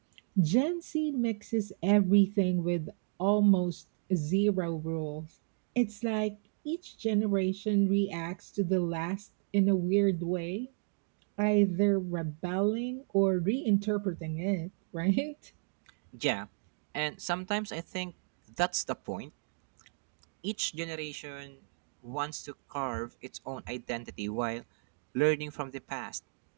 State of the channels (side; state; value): left; silent; 56 dB below the other